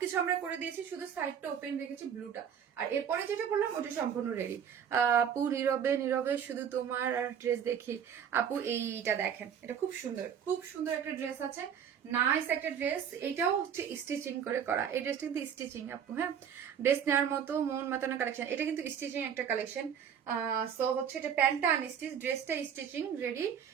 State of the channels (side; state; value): left; quieter; 8.2 dB